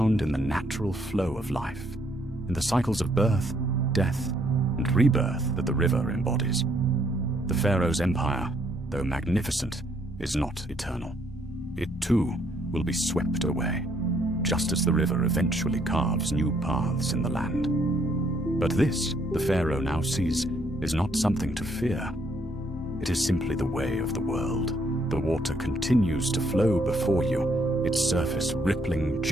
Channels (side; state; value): both; normal; correlation 0.69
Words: in the natural flow of life, in the cycles of birth, death, and rebirth that the river embodies. The pharaoh's empire, though magnificent, is not eternal. It too will be swept away, just as the river eventually carves new paths in the land. But this, the pharaoh now sees, is not something to fear. It is simply the way of the world. The water continues to flow before you, its surface rippling